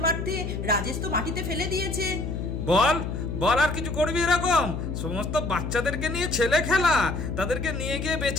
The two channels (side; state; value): left; noise; hum, 4 dB below the sound